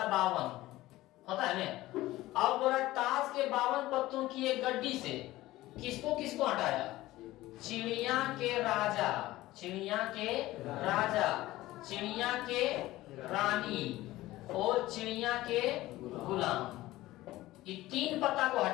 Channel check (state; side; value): quieter; right; 17.1 dB